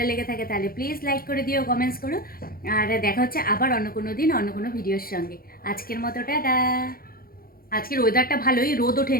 লেগে থাকে তাহলে প্লিজ লাইক করে দিও, কমেন্টস করো। আর দেখা হচ্ছে আবার অন্য কোনো দিন অন্য কোনো ভিডিওর সঙ্গে। আজকের মতো টাটা। আজকের ওয়েদারটা ভালোই, রোদ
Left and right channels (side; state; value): right; late; 0.43 ms